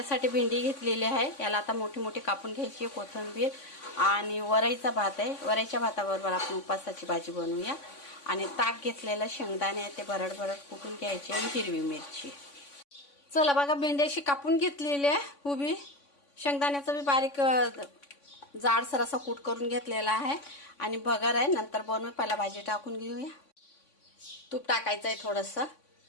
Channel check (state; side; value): late; right; 3.5 ms